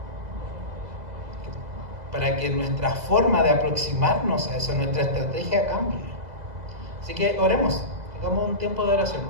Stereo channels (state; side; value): late; left; 2.0 ms